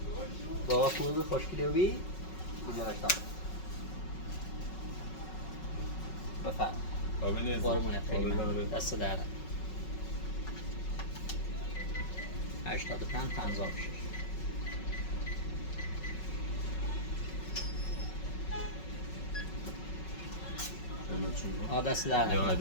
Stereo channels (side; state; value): right; late; 5.4 ms